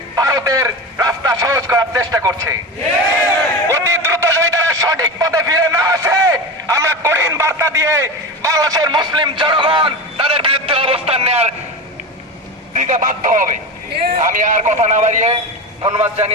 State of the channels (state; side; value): normal; both; correlation 0.24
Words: ভারতের রাস্তা সহজ করার চেষ্টা করছে। অতি দ্রুত যদি তারা সঠিক পথে ফিরে না আসে, আমরা কঠিন বার্তা দিয়ে বাংলাদেশের মুসলিম জনগণ তাদের বিরুদ্ধে অবস্থান নেওয়ার দিতে বাধ্য হবে। আমি আর কথা না বাড়িয়ে ধন্যবাদ